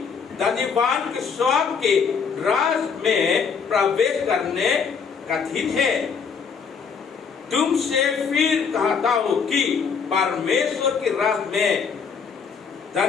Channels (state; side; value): quieter; right; 6.1 dB